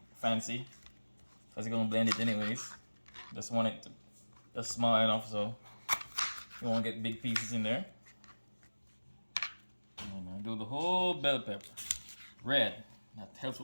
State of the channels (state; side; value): inverted; both; correlation -1.00